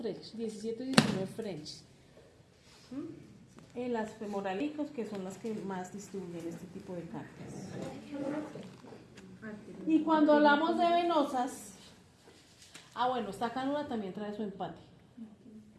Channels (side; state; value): both; identical; correlation 1.00